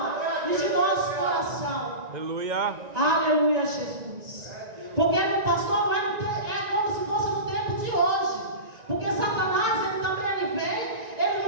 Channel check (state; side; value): late; left; 1.9 ms